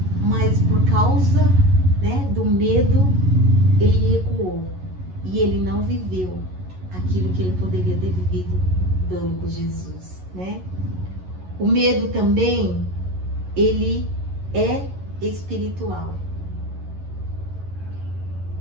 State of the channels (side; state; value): left; late; 11 ms